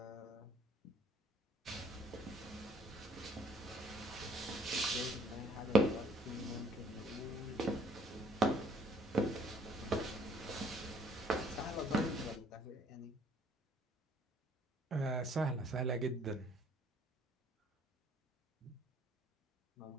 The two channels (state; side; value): normal; both; correlation 0.61